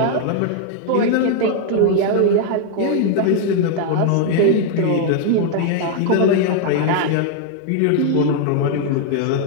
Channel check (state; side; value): different; both; correlation 0.00